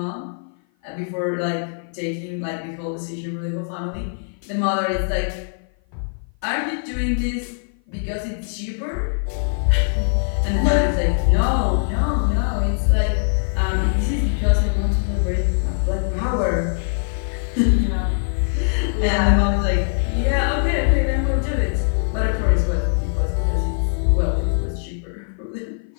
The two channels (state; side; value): silent; right; 56 dB below the other